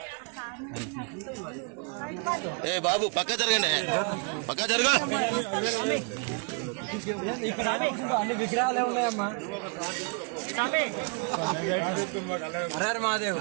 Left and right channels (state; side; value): quieter; left; 34.8 dB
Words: ए बाबू पक्का जरगंడి పక్కా జరగా అన్ని విగ్రహాలే ఉన్నాయమ్మా. హర మహాదేవ్.